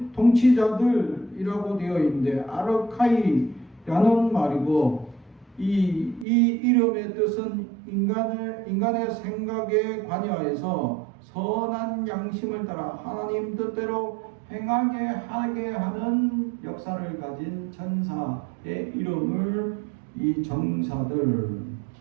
통치자들이라고 되어 있는데 아르카이라는 말이고 이 이름의 뜻은 인간의 생각에 관여해서 선한 양심을 따라 하나님 뜻대로 행하게 하는 역사를 가진 천사의 이름을 이 정사들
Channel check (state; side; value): drops out; left; at 6.2 s